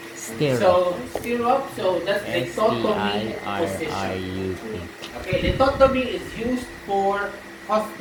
Stirrup. So, stirrup, so that's lithotomy position. S-T-I-R-R-U-P. Okay, lithotomy is used for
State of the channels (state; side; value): identical; both; correlation 1.00